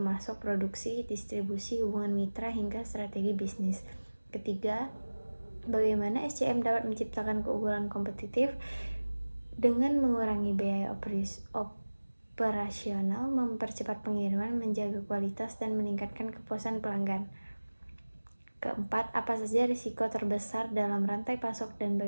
produksi, distribusi, hubungan mitra, hingga strategi bisnis. Ketiga, bagaimana SCM dapat menciptakan keunggulan kompetitif dengan mengurangi biaya operasional, mempercepat pengiriman, menjaga kualitas, dan meningkatkan kepuasan pelanggan. Keempat, apa saja risiko terbesar dalam rantai pasok dan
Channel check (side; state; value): both; inverted; correlation -1.00